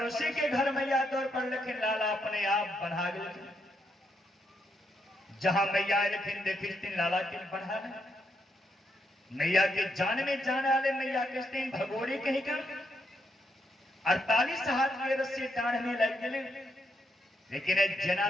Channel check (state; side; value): normal; both; correlation 0.78